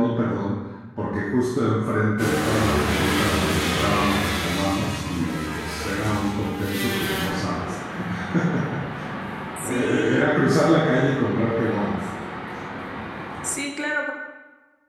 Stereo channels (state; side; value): identical; both; correlation 1.00